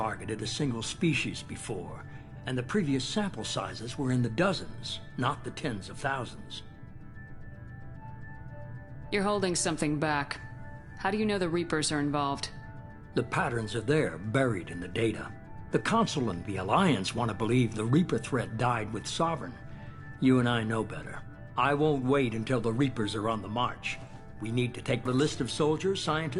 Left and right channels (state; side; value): identical; both; correlation 1.00